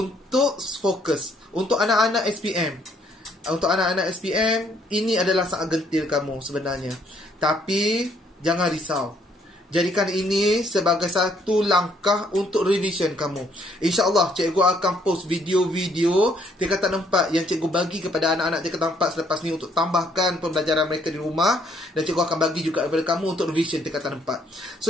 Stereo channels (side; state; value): both; normal; correlation 0.67